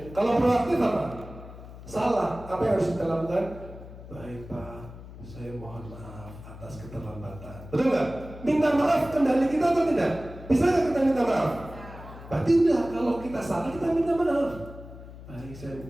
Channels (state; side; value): noise; left; hum, 15 dB below the sound